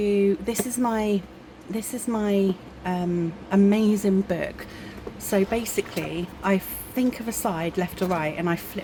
this is my amazing book. So basically I think of a side left or right and I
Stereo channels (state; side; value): identical; both; correlation 1.00